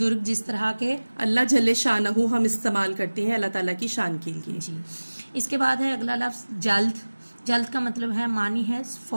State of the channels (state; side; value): inverted; both; correlation -1.00